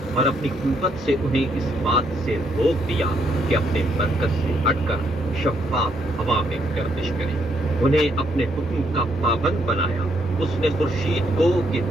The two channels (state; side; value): normal; both; correlation 0.73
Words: اور اپنی قوت سے انہیں اس بات سے روک دیا کہ اپنے مرکز سے ہٹ کر شفاف ہوا میں گردش کریں۔ انہیں اپنے حکم کا پابند بنایا۔ اس نے خورشید کو کہ